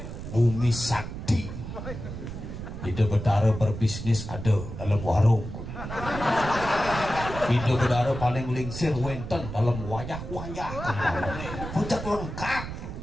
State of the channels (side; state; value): right; noise; rumble, 8 dB below the sound